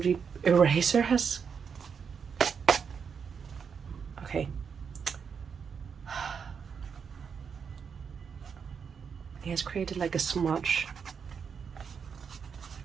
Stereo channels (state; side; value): quieter; left; 6.5 dB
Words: eraser has... Okay. It has created like a smudge.